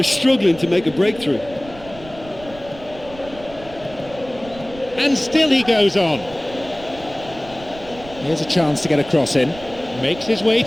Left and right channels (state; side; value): noise; right; rumble, 18 dB below the sound